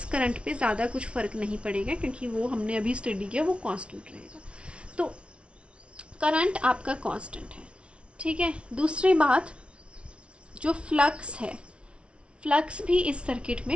करंट पे ज़्यादा कुछ फ़र्क नहीं पड़ेगा, क्योंकि वो हमने अभी स्टडी किया, वो कांस्टेंट रहेगा। तो करंट आपका कांस्टेंट है, ठीक है। दूसरी बात, जो फ्लक्स है, फ्लक्स भी इस सर्किट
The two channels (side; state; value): left; late; 0.059 ms